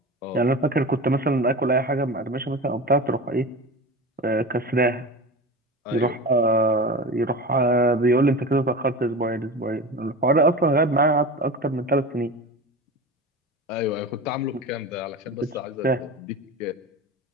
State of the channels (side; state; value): both; normal; correlation 0.30